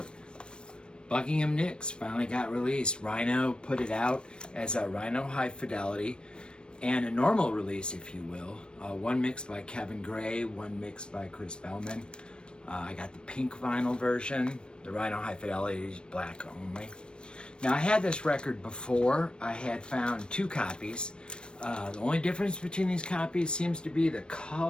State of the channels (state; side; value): late; right; 0.054 ms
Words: Buckingham Nicks. Finally got released. Rhino put it out as a Rhino High Fidelity and a normal release, if you will. One mixed by Kevin Gray, one mixed by Chris Bellman. I got the pink vinyl version. The Rhino High Fidelity is black only. Now, I had this record before. I had found two copies. The only difference between these copies seems to be the